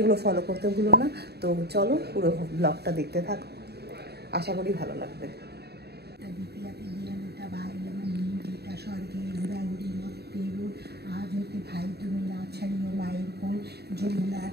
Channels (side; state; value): left; late; 0.47 ms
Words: ফলো করতে ভুলো না। তো চলো পুরো ব্লগটা দেখতে থাকো, আশা করি ভালো লাগবে। আজ হতে ভাই তুমি না ছাড়িও মায়ের কোল, যমুনা